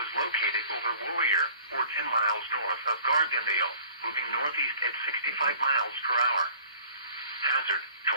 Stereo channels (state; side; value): inverted; both; correlation -0.50